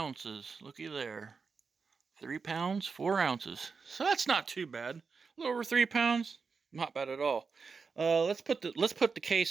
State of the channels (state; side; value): quieter; left; 5.1 dB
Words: Looky there. 3 pounds 4 ounces. So that's not too bad. A little over 3 pounds. Not bad at all. Let's put the